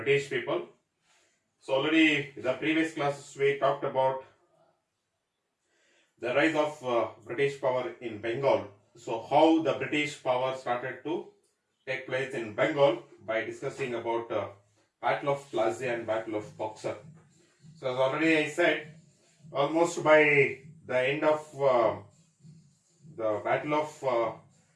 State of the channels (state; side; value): identical; both; correlation 1.00